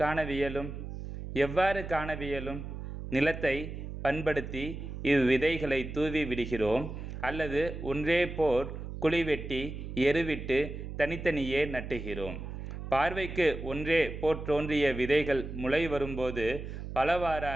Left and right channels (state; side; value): noise; right; hum, 8 dB below the sound